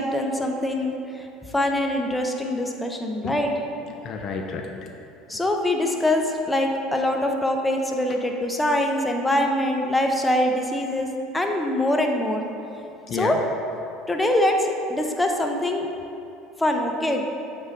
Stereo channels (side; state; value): both; normal; correlation 0.68